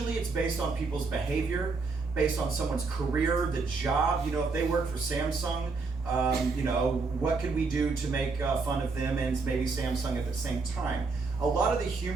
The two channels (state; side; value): quieter; left; 4.2 dB